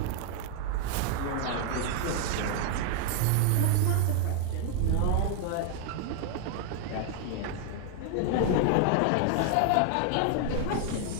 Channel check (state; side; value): different; both; correlation 0.00